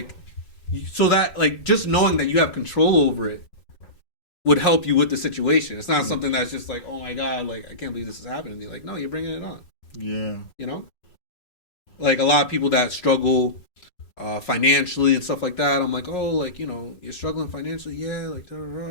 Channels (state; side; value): late; right; 5.5 ms